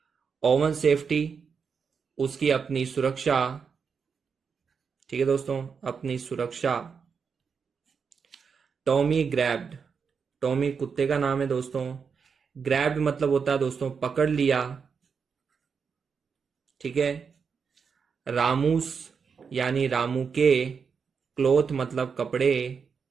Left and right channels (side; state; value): left; quieter; 6.0 dB